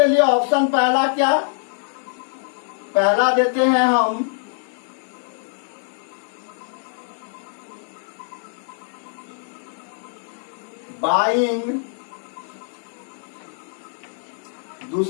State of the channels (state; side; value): silent; right; digital silence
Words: लिए ऑप्शन पहला क्या, पहला देते हैं हम बाइंग,